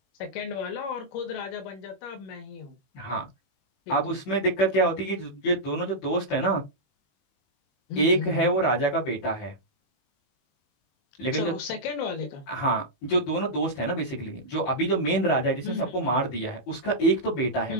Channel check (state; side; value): late; right; 21 ms